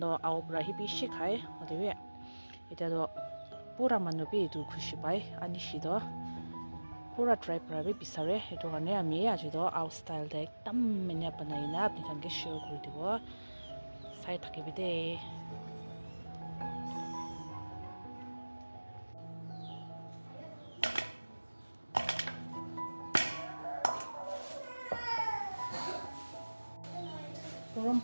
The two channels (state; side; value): inverted; both; correlation -1.00